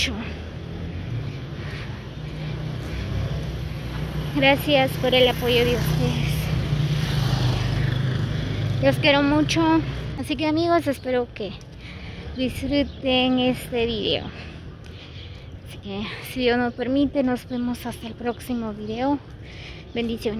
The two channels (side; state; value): both; identical; correlation 1.00